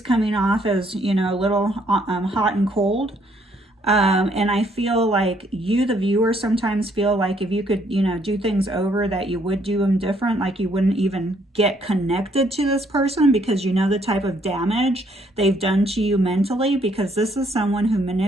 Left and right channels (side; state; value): both; normal; correlation 0.68